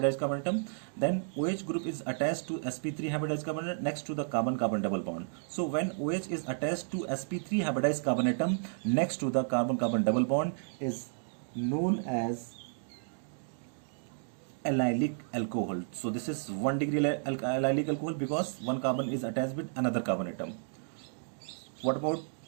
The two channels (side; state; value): left; silent; digital silence